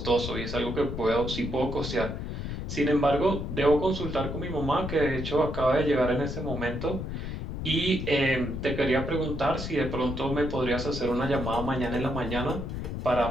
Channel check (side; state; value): left; noise; rumble, 5 dB below the sound